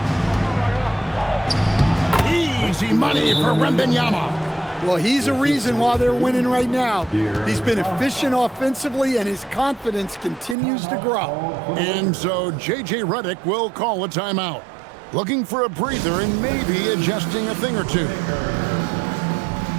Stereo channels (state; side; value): drops out; left; at 10.6 s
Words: Easy money for Wembanyama. Well, he's a reason why they're winning right now. He's been efficient offensively, and his confidence continues to grow. And so J.J. Redick will call a timeout. looking for a breather and maybe adjusting a thing or two.